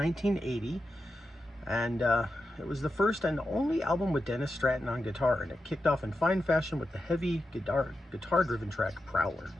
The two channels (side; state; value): both; normal; correlation 0.89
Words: and it was the first and only album with Dennis Stratton on guitar, and it kicked off in fine fashion with the heavy guitar-driven track Prowler.